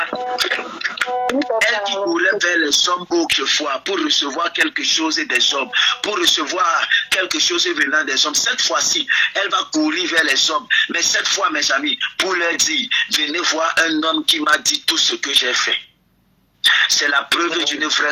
Elle qui courait vers les hommes autrefois pour recevoir quelque chose des hommes, pour recevoir quelque chose venant des hommes. Cette fois-ci, elle va courir vers les hommes. Mais cette fois, mes amis, pour leur dire, venez voir un homme qui m'a dit tout ce que j'ai fait. C'est la preuve d'une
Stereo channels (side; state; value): both; identical; correlation 1.00